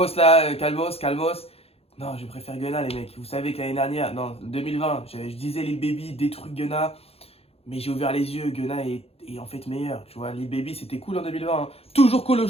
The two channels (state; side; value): late; right; 0.29 ms